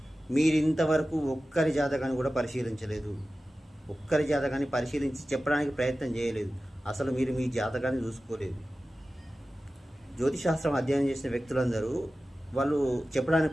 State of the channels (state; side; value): normal; both; correlation 0.95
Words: మీరు ఇంతవరకు ఒక్కరి జాతకాన్ని కూడా పరిశీలించలేదు. ఒక్కరి జాతకాన్ని పరిశీలించి చెప్పడానికి ప్రయత్నం చేయలేదు. అసలు మీరు మీ జాతకాన్ని చూసుకోలేదు. జ్యోతిశాస్త్రం అధ్యయనం చేసిన వ్యక్తులందరూ వాళ్ళు చెప్పడానికి